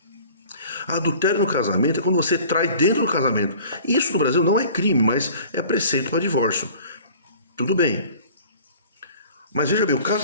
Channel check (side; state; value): both; inverted; correlation -0.47